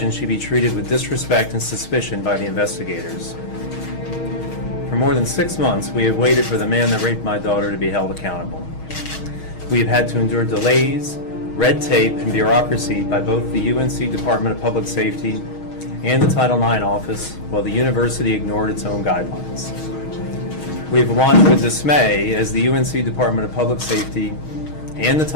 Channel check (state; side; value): late; right; 6.4 ms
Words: she'd be treated with disrespect and suspicion by the investigators. For more than 6 months, we have waited for the man that raped my daughter to be held accountable. We have had to endure delays, red tape, and bureaucracy by both the UNC Department of Public Safety and the Title IX office, while the university ignored its own guidelines. We have watched with dismay as the UNC Department of Public Safety and the